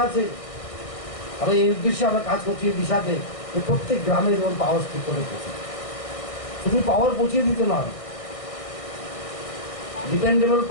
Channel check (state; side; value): late; right; 1.6 ms